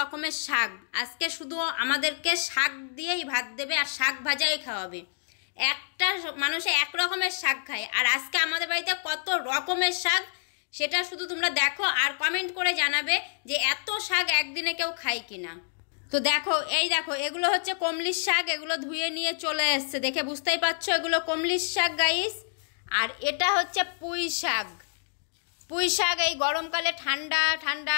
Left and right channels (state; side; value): silent; right; digital silence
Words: শাক আজকে, শুধু আমাদেরকে শাক দিয়েই ভাত দেবে আর শাক ভাজাই খাওয়াবে। একটা মানুষে এক রকমের শাক খায়, আর আজকে আমাদের বাড়িতে কত রকমের শাক সেটা শুধু তোমরা দেখো আর কমেন্ট করে জানাবে যে এত শাক একদিনে কেউ খায় কিনা। তো দেখো, এই দেখো, এগুলো হচ্ছে কমলির শাক, এগুলো ধুয়ে নিয়ে চলে এসছে, দেখে বুঝতেই পারছো এগুলো কমলির শাক গাইস। আর এটা হচ্ছে পুঁই শাক। পুঁই শাক এই গরমকালে ঠান্ডা ঠান্ডা